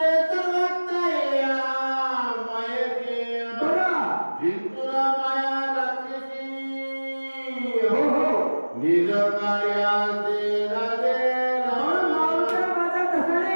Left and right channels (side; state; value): both; inverted; correlation -1.00